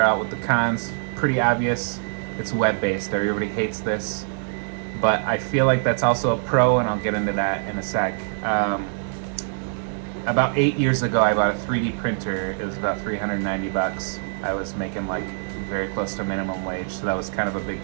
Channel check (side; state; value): left; silent; digital silence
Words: out with the cons. Pretty obvious. It's web-based. Everybody hates this, but I feel like that's also a pro, and I'll get into that in a sec. About 8 years ago, I bought a 3D printer. It was about $390. I was making like very close to minimum wage, so that was kind of a big